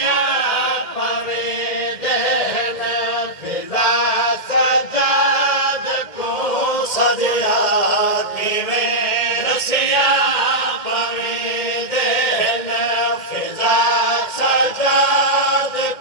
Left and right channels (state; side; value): late; right; 2.1 ms